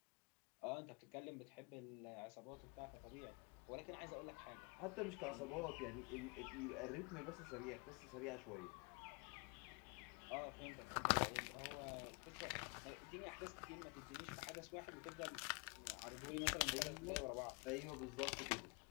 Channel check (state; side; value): quieter; right; 31.7 dB